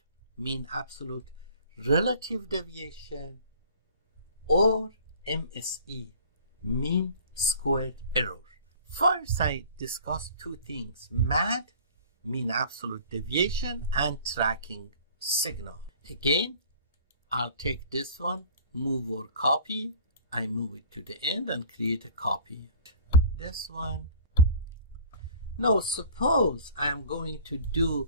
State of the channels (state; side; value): inverted; both; correlation -0.46